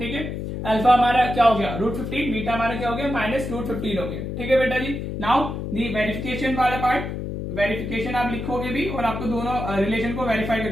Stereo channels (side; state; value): left; noise; hum, 5 dB below the sound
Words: है, अल्फा हमारा क्या हो गया, रूट 15, बीटा हमारा क्या हो गया, माइनस रूट 15 हो गया। ठीक है बेटा जी, नाउ दी वेरिफिकेशन वाला पार्ट, वेरिफिकेशन आप लिखोगे भी और आपको दोनों रिलेशन को वेरीफाई